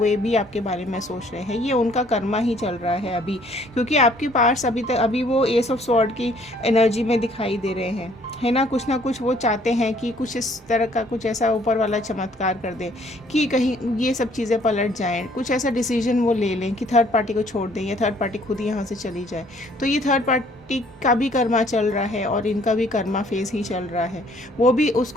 भी आपके बारे में सोच रहे हैं, ये उनका कर्मा ही चल रहा है अभी, क्योंकि आपके पास अभी वो एस ऑफ स्वॉर्ड की एनर्जी में दिखाई दे रहे हैं, है ना। कुछ ना कुछ वो चाहते हैं कि कुछ इस तरह का कुछ ऐसा ऊपर वाला चमत्कार कर दे कि कहीं ये सब चीज़ें पलट जाएं, कुछ ऐसा डिसीजन वो ले लें कि थर्ड पार्टी को छोड़ दें या थर्ड पार्टी खुद ही यहाँ से चली जाए। तो ये थर्ड पार्टी का भी कर्मा चल रहा है और इनका भी कर्मा फेज ही चल रहा है। वो भी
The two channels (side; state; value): both; normal; correlation 0.61